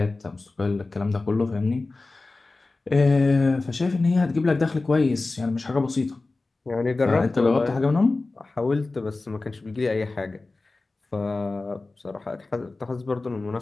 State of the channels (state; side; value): quieter; right; 3.4 dB